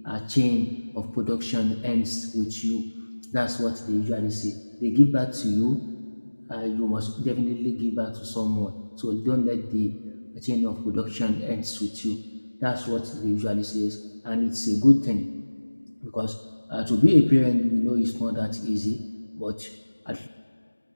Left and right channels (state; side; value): inverted; both; correlation -1.00